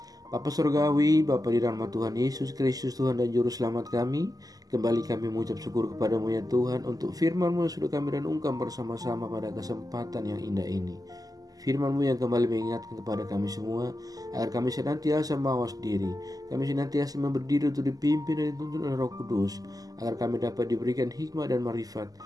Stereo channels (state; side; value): late; left; 0.17 ms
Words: Bapa Surgawi, Bapa di dalam Tuhan Yesus Kristus Tuhan dan Juru Selamat kami, kembali kami mengucap syukur kepadamu ya Tuhan untuk firman-Mu yang sudah kami renungkan bersama-sama pada kesempatan yang indah ini. Firman-Mu yang kembali mengingatkan kepada kami semua agar kami senantiasa mawas diri. Kami senantiasa berdiri untuk dipimpin dan dituntun oleh Roh Kudus, agar kami dapat diberikan hikmat dan marifat